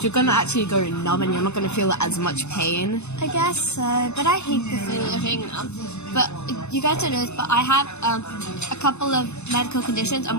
you're gonna actually go numb, and you're not gonna feel as much pain. I guess so, but I hate the feeling of being numb. But you guys don't know this, but I have a couple of medical conditions,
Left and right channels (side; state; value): right; late; 0.81 ms